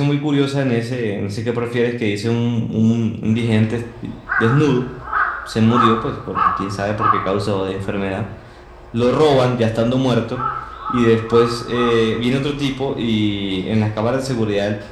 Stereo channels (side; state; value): both; identical; correlation 1.00